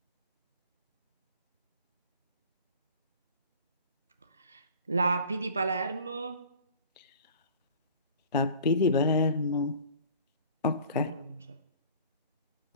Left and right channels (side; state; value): both; inverted; correlation -0.46